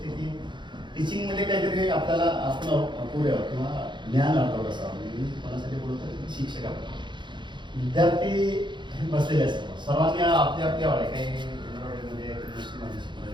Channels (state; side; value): late; left; 0.23 ms